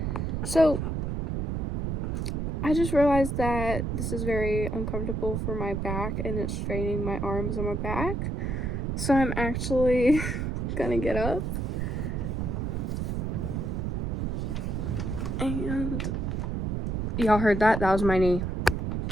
So I just realized that this is very uncomfortable for my back and it's straining my arms and my back. So I'm actually gonna get up and y'all heard that? That was my knee.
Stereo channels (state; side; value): noise; right; rumble, 1 dB below the sound